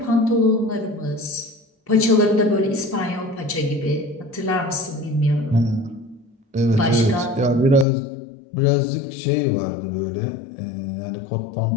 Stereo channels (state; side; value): drops out; right; at 7.9 s